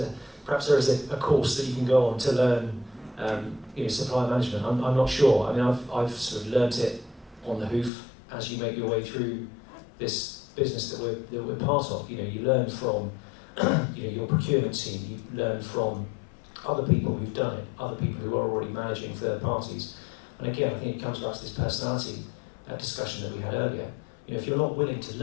a course that you can go on to learn supply management. I'm not sure. I mean, I've sort of learnt it on the hoof as you make your way through this business that we're part of. You learn from your procurement team, you learn from other people who've done it, other people who are already managing third parties. And again, I think it comes back to this personality discussion that we had earlier. If you're not willing to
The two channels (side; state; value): right; drops out; at 7.9 s